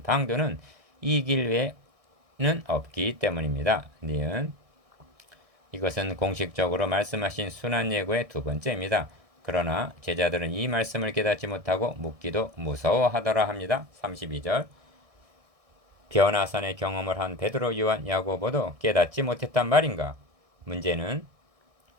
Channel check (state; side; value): late; left; 1.6 ms